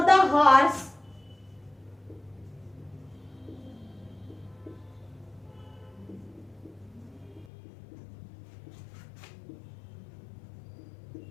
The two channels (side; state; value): right; drops out; at 7.5 s